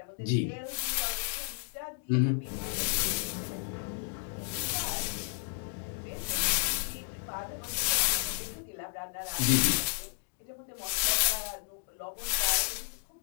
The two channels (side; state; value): right; silent; 56 dB below the other